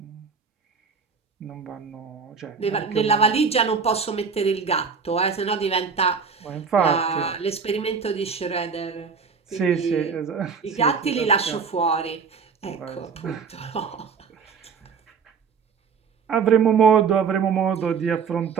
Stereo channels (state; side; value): quieter; left; 5.8 dB